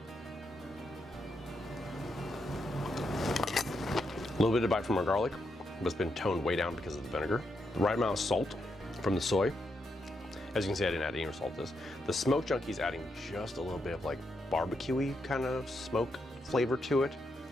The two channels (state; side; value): normal; both; correlation 0.82